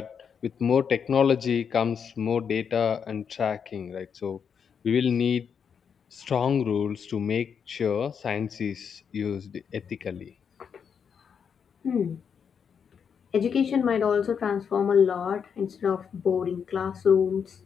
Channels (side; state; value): right; quieter; 7.0 dB